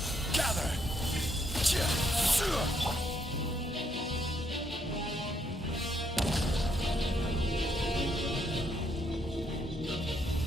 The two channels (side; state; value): both; normal; correlation 0.73